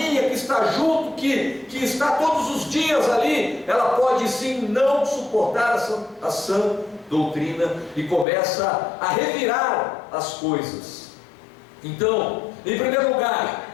que está junto, que está todos os dias ali, ela pode sim não suportar a sã doutrina e começa a revirar as coisas. Então, em primeiro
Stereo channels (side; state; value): right; drops out; at 8.2 s